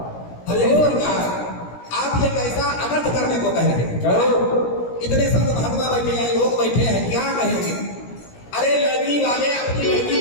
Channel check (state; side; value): late; right; 17 ms